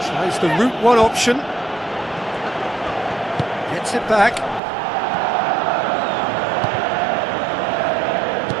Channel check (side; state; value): left; drops out; at 4.6 s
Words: Tries the route one option. Gets it back.